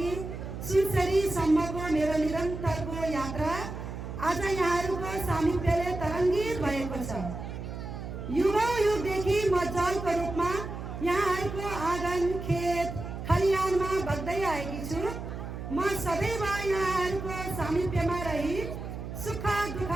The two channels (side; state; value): right; noise; hum, 8 dB below the sound